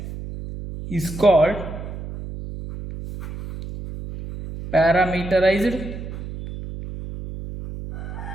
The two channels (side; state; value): right; noise; hum, 10 dB below the sound